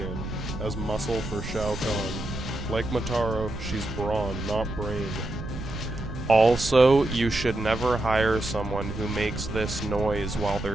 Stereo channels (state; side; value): noise; right; rumble, 8 dB below the sound